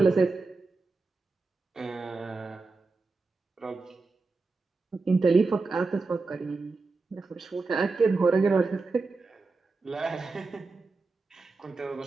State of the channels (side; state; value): left; quieter; 3.9 dB